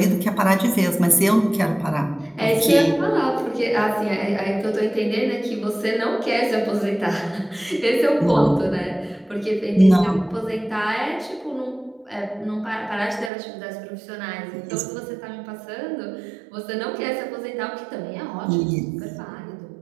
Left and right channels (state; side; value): drops out; left; at 13.3 s